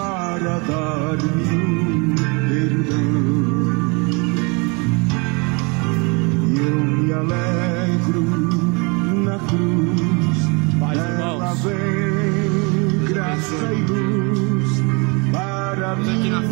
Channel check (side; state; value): left; quieter; 30.8 dB